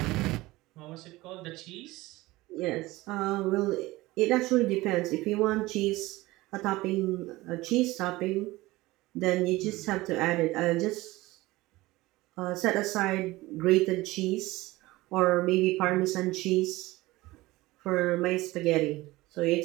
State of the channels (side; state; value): left; quieter; 19.4 dB